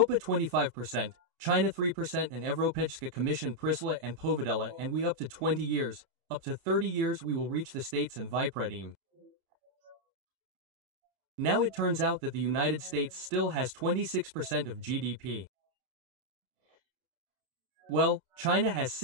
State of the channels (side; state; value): left; late; 30 ms